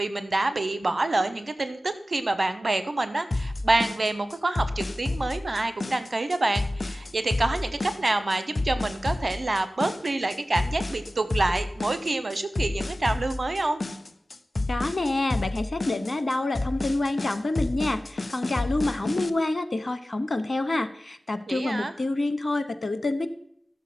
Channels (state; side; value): normal; both; correlation 0.95